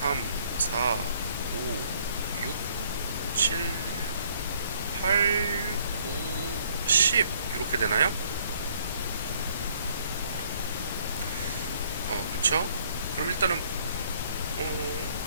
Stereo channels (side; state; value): both; inverted; correlation -0.63